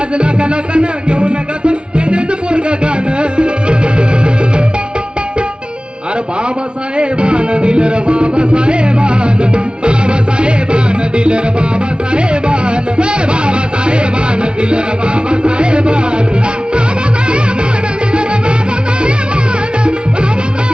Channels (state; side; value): late; left; 0.055 ms